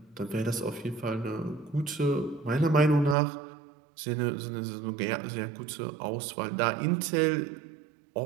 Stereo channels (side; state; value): left; drops out; at 3.2 s